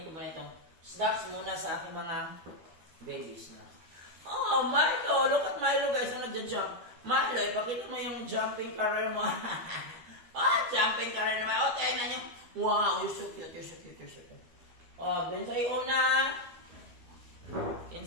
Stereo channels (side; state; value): left; late; 12 ms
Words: ko muna itong snacks muna sa aking mga babies na. Oh, Milo! Look at Milo guys, ang nagja-jump. Milo, ipakita mo yung jumping career mo. Jumping career naman. Tingnan nyo. Wow, you're so cute, you're so cute, you're so cute. Then sa una.